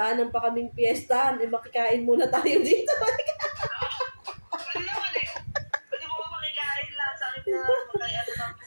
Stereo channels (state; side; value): inverted; both; correlation -1.00